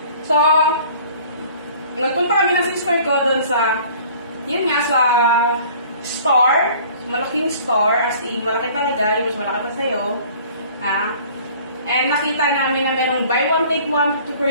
So, nagpunta kami ng sister ko doon sa, yun nga, sa store. Malaking store, as in, malaki talaga. Yung mas malaki pa sa'yo. Ha? And nakita namin na merong buy one, take one,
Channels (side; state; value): both; inverted; correlation -0.50